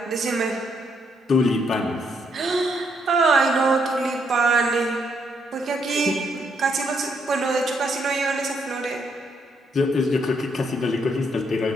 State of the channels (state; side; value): normal; both; correlation 0.74